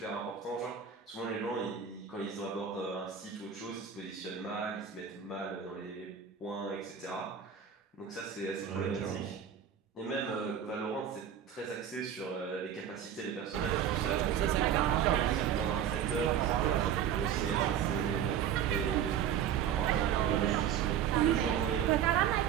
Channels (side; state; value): left; quieter; 8.8 dB